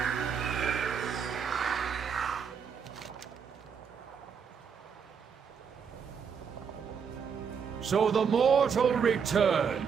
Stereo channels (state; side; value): quieter; left; 6.7 dB